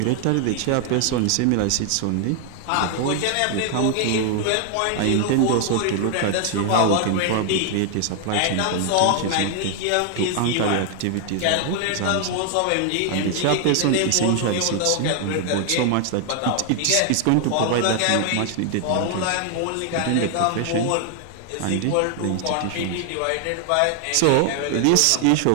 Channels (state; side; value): different; both; correlation 0.00